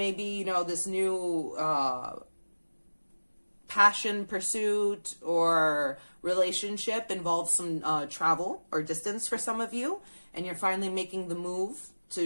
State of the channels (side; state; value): both; inverted; correlation -1.00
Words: this new passion, pursuit, or relationship involves some travel or distance for some of you, and you're finally making the move